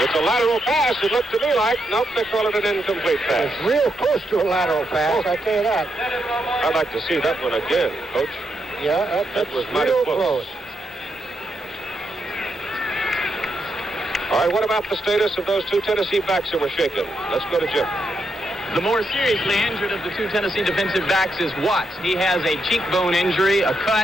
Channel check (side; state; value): both; normal; correlation 0.82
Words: It's a lateral pass, it looked to me like. Nope, they call it an incomplete pass. It's real close to a lateral pass, I tell you that. I'd like to see that one again, Coach. Yeah, that was mighty close. All right, what about the status of those two Tennessee backs that were shaken? Let's go to Jim. The more seriously injured of the two Tennessee defensive backs is Watts. He has a cheekbone injury, a